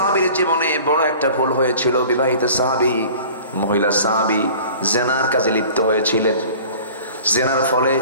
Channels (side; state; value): both; inverted; correlation -0.45